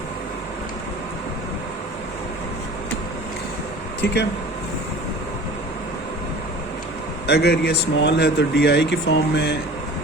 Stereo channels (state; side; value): normal; both; correlation 0.42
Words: ठीक है। अगर ये स्मॉल है तो डी आई की फॉर्म में